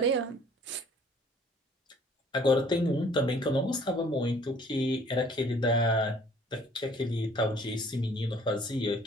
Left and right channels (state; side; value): normal; both; correlation 0.56